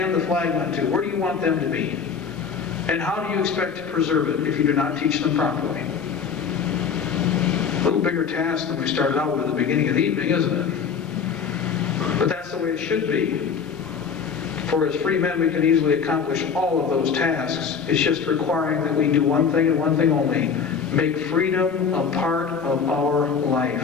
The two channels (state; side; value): quieter; right; 6.3 dB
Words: the flag on to, where do you want them to be? And how do you expect to preserve it if you do not teach them properly? A little bigger task than we started out with at the beginning of the evening, isn't it? But that's the way it should be. For as free men, we can easily accomplish all of those tasks. It's just requiring that we do one thing and one thing only. Make freedom a part of our life.